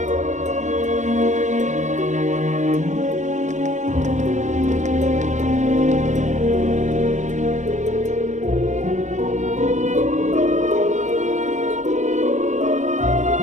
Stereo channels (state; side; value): late; left; 0.35 ms